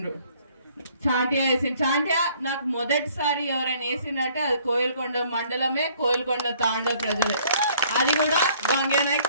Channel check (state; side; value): inverted; both; correlation -0.60